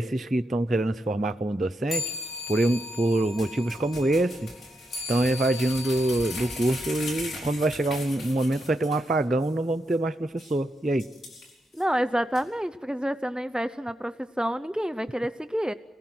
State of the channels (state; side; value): normal; both; correlation 0.84